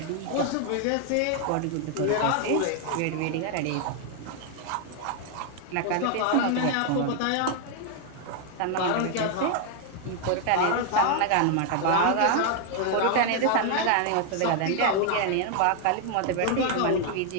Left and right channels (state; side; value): different; both; correlation 0.00